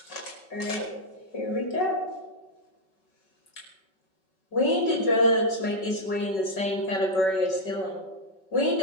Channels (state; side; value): late; right; 5.3 ms